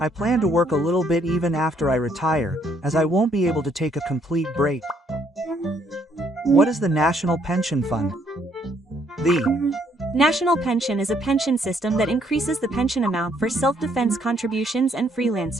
I plan to work a little bit even after I retire, as I won't be able to take a complete break. What is the National Pension Fund? The National pension is a pension system that increases the pension amount for self-defense contributions and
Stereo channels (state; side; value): normal; both; correlation 0.69